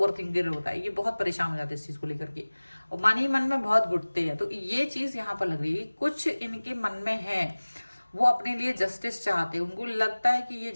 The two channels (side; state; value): both; inverted; correlation -1.00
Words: थिंकर होता है, ये बहुत परेशान हो जाते हैं इस चीज को लेकर के, और मन ही मन में बहुत घुटते हैं। तो ये चीज यहाँ पर लग रही है, कुछ इनके मन में है, वो अपने लिए जस्टिस चाहते हैं, उनको लगता है कि ये